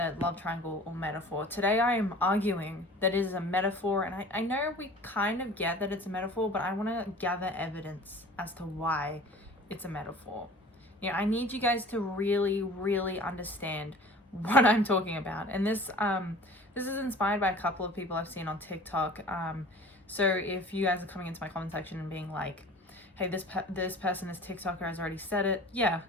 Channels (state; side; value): normal; both; correlation 0.44